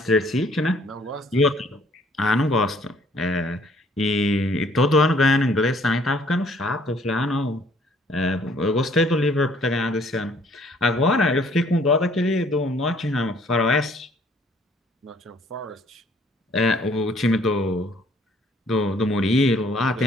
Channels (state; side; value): normal; both; correlation 0.61